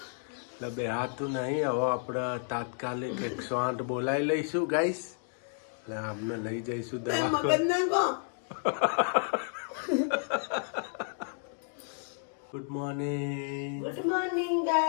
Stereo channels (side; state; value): right; silent; 57 dB below the other